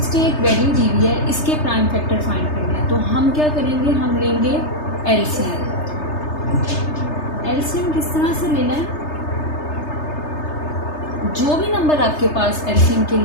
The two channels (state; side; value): late; right; 3.3 ms